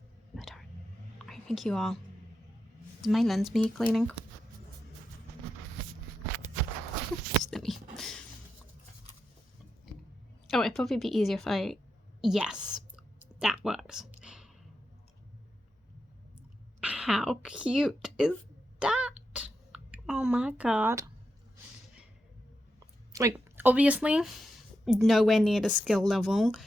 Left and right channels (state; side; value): normal; both; correlation 0.87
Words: I think you are. Does my lens need cleaning? Oh, it'd probably be easier if I... Yes, that works. How cute is that? Oh my god. Like, obviously, nowhere near the skill level